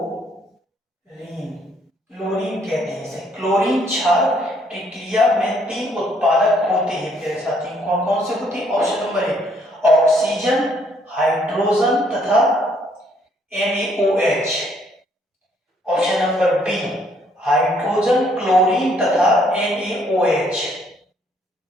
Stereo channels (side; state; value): both; normal; correlation 0.67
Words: क्लोरीन कहते हैं इसे। क्लोरीन क्षार प्रक्रिया में 3 उत्पादक होते हैं प्यारे साथियों। कौन कौन से होते हैं? Option number A oxygen, hydrogen तथा NaOH। Option number B hydrogen, chlorine तथा NaOH।